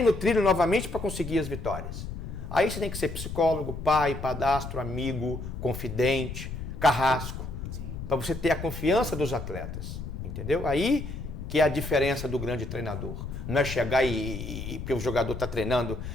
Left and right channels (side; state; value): left; noise; rumble, 7 dB below the sound